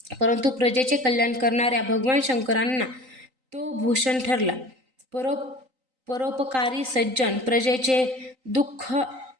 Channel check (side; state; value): left; late; 3.9 ms